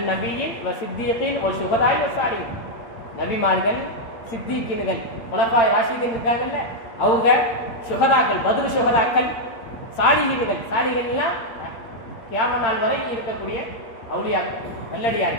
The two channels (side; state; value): right; late; 8.8 ms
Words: நபிய்யீன் வ சித்தீகீன் வ ஷுஹதாஇ வ ஸாலிஹீன்." நபிமார்கள், சித்தீகீன்கள், குலஃபாய் ராஷிதீன் இருக்காங்கல்ல, அவங்க ஷுஹதாக்கள், பத்ர் ஷுஹதாக்கள், சாலிஹீன்கள். சாலிஹீன்லாம் கியாமத் நாள் வரை இருக்கக்கூடிய அவுலியாக்கள்,